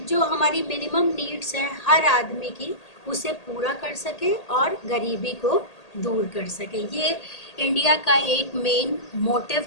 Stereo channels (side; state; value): right; late; 1.8 ms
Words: जो हमारी मिनिमम नीड्स हैं हर आदमी की उसे पूरा कर सके और गरीबी को दूर कर सके। ये इंडिया का एक मेन मोटिव